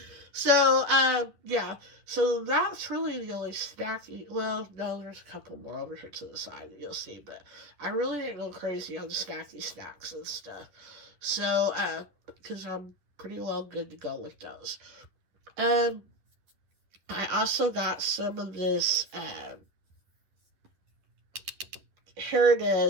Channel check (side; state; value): left; late; 10 ms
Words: So, yeah. So that's really the only snacky. Well, no, there's a couple more over here to the side that you'll see, but I really didn't go crazy on the snacky snacks and stuff. So, because I'm pretty well good to go with those. Um, I also got some of this, here it